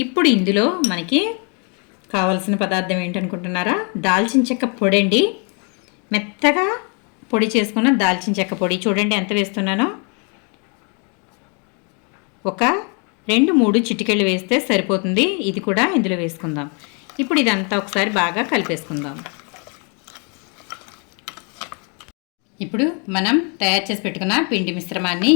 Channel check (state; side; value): quieter; right; 36.4 dB